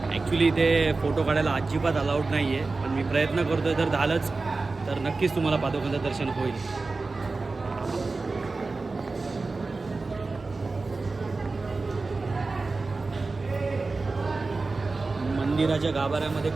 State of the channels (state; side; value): quieter; left; 3.7 dB